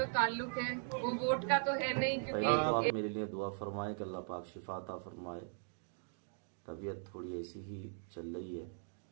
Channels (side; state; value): left; silent; digital silence